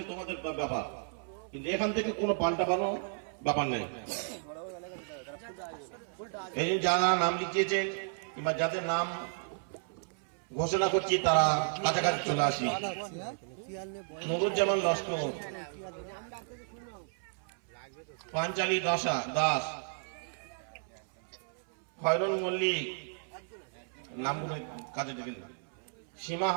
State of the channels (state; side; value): silent; left; 56 dB below the other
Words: তোমাদের ব্যাপার, কিন্তু এখান থেকে কোনো পাল্টানো ব্যাপার নাই। এই যারা নাম লিখিয়েছেন কিংবা যাদের নাম ঘোষণা করছি তারা কাছাকাছি চলে আসি। নুরুজ্জামান লস্কর, পাঞ্চালী দাস, খয়রুল মল্লিক, নামগুলো কাজে দেখেন, সীমা